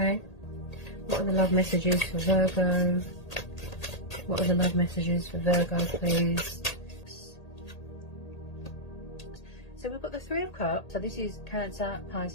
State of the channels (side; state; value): right; late; 1.8 ms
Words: what are the love messages for Virgo? What are the love messages for Virgo, please? So we've got the Three of Cups. So this is Cancer,